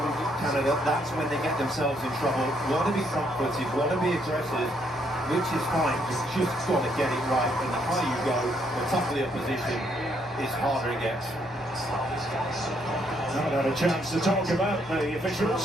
Canada, that's when they get themselves in trouble. Want to be front-footed, want to be aggressive, which is fine. You've just got to get it right. And the higher you go, the tougher the opposition is, harder it gets. Not had a chance to talk about the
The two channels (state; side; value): normal; both; correlation 0.72